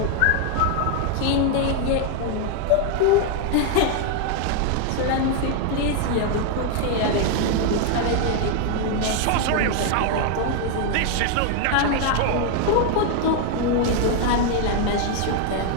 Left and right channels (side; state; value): both; different; correlation 0.00